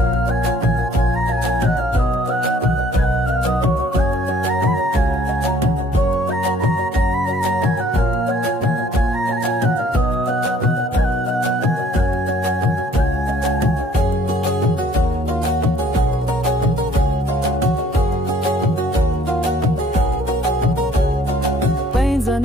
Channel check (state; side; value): normal; both; correlation 0.58